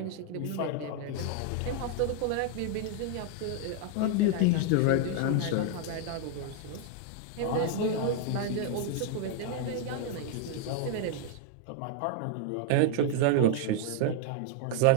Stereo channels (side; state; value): both; different; correlation 0.00